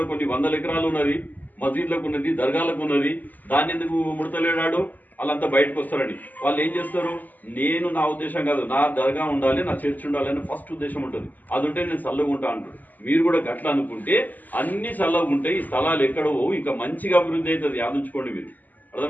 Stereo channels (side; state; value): right; late; 0.083 ms